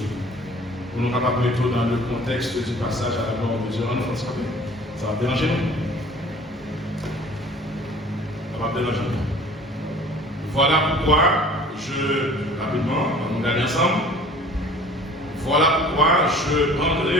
Pour nous capables de mettre dans le contexte du passage à la gloire de Dieu en France. Ça va déranger nous. Ça va déranger nous. Voilà pourquoi rapidement, on va aller ensemble. Voilà pourquoi je prendrai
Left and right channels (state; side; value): normal; both; correlation 0.48